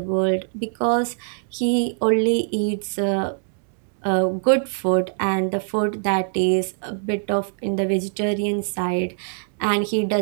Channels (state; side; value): silent; left; digital silence